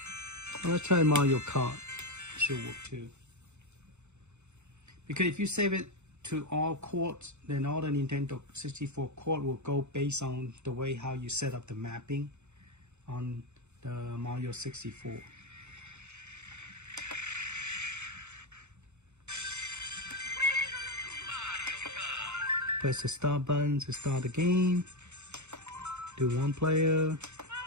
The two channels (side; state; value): left; late; 0.82 ms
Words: Let's try Mario Kart. It should work too. Because if you save it to all courts, then all the Nintendo 64 court will go based on the way how you set up the mapping on the Mario 64. Press the start button to start the game. Do 1 player.